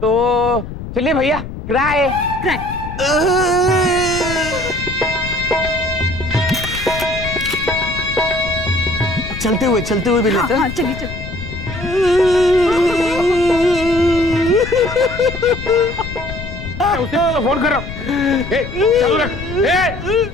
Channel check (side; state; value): left; noise; rumble, 9 dB below the sound